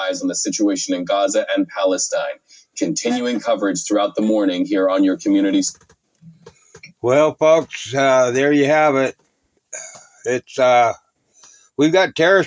on the situation in Gaza and Palestine. Continuing coverage throughout the morning here on your communities. Well, folks, there you have it. It's we've got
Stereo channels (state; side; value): identical; both; correlation 1.00